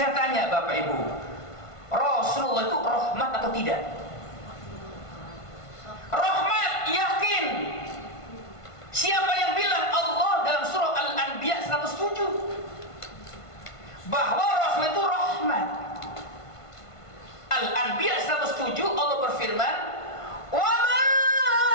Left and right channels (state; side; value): late; right; 1.5 ms